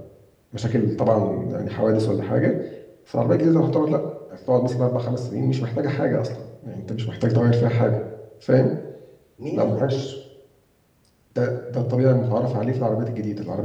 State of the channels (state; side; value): identical; both; correlation 1.00